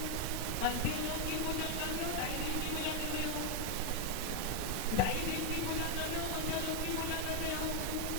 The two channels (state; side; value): different; both; correlation 0.01